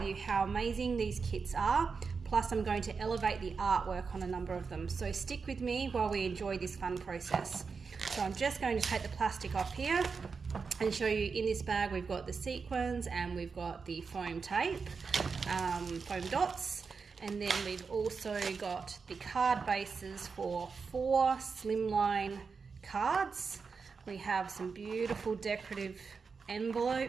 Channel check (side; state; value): left; quieter; 5.1 dB